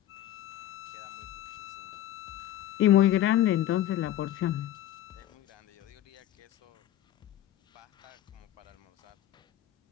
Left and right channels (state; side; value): quieter; right; 12.8 dB